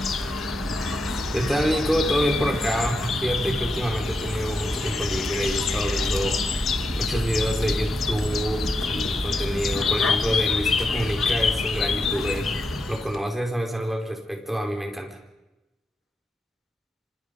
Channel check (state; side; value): normal; both; correlation 0.84